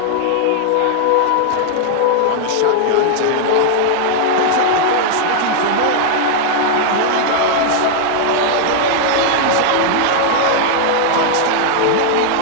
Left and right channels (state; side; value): different; both; correlation -0.01